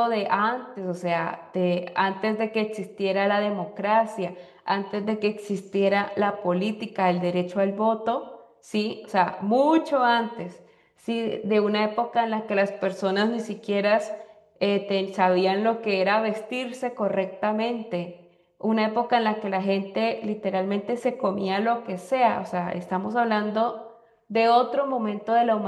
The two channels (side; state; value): both; identical; correlation 1.00